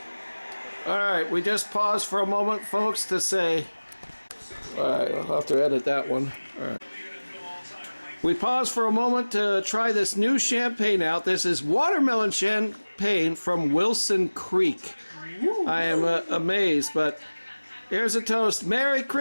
All right, we just paused for a moment, folks, to say... All right, I'll have to edit that one. All right. We paused for a moment to try this new champagne out. This is watermelon champagne from Wilson Creek. I am amazed, but here's a toast. Merry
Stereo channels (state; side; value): inverted; both; correlation -1.00